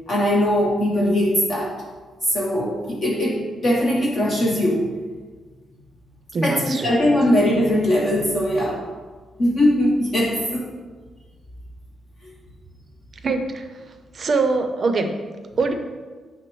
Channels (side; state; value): both; normal; correlation 0.80